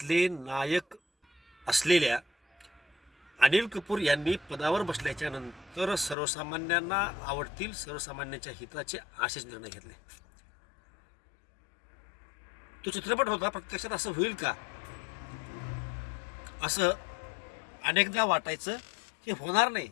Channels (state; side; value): drops out; right; at 6.2 s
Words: नायक असलेल्या अनिल कपूर यांनी पदावर बसल्याच्या नंतर सर्वसामान्यांना आवडतील, सर्वसामान्यांच्या हिताचे असेच निर्णय घेतले. तो चित्रपट होता, प्रत्यक्षात असं होईल का असं अनेकदा वाटायचं, हे होणार नाही